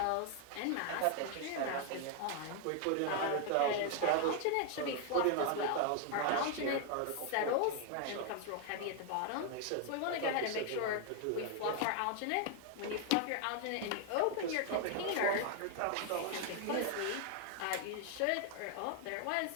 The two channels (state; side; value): different; both; correlation 0.00